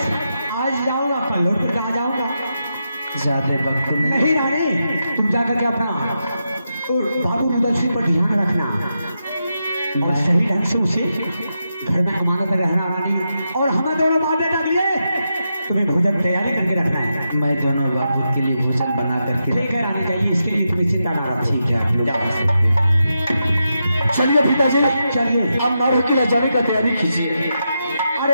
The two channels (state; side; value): inverted; both; correlation -0.86